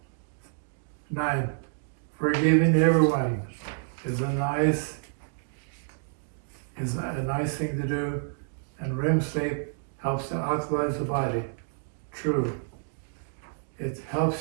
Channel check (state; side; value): silent; left; digital silence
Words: 9, forgiving everyone is a nice thing to do, and REM sleep helps to alkalize the body. True. It